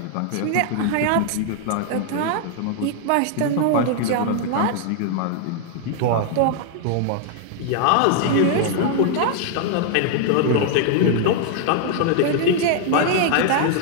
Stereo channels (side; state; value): both; different; correlation 0.00